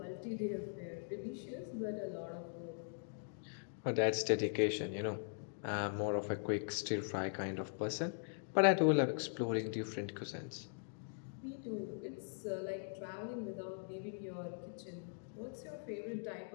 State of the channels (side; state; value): right; silent; digital silence